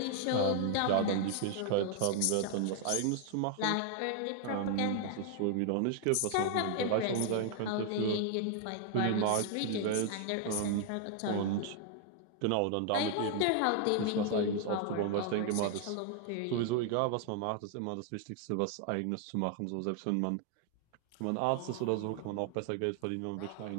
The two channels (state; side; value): different; both; correlation 0.00